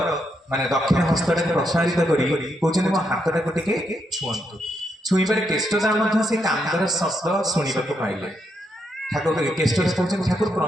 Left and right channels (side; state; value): both; normal; correlation 0.79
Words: माने दक्षिण हस्तटा प्रसारित करी कहते मो हाथटा को टिके छुअंतु छुईबार केष्टटा से कांदर शब्द शुणा पाइले ठाकुर केष्टटा कहते ठाकुर